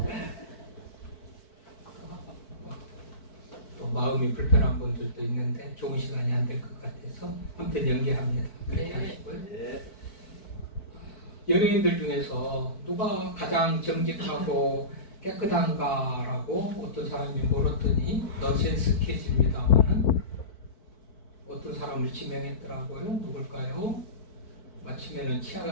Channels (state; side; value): late; right; 4.6 ms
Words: 또 마음이 불편한 분들도 있는데 좋은 시간이 안 될 것 같아서 아무튼 연기합니다. 그렇게 네. 하시고요. 연예인들 중에서 누가 가장 정직하고 깨끗한가라고 어떤 사람이 물었더니 넌센스 퀴즈입니다만은 어떤 사람을 지명했더라고요. 누굴까요? 마치면은 치약